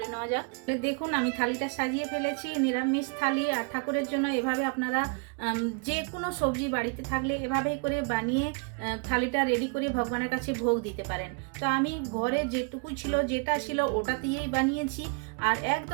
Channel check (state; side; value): quieter; left; 35.4 dB